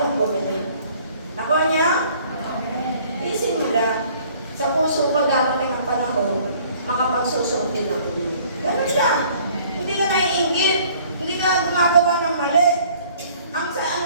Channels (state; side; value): inverted; both; correlation -0.56